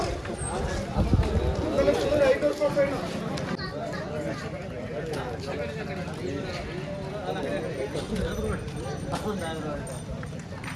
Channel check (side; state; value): both; identical; correlation 1.00